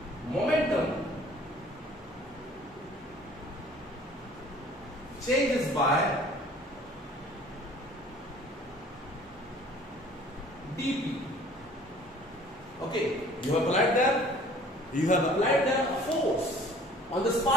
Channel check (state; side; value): normal; both; correlation 0.51